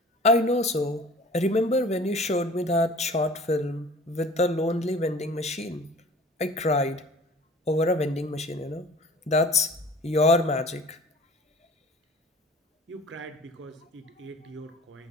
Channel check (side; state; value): both; normal; correlation 0.45